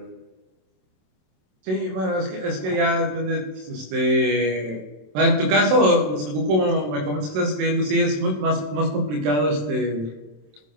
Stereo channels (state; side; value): late; left; 27 ms